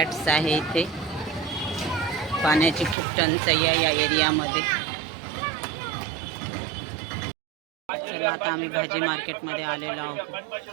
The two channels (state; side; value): drops out; left; at 3.0 s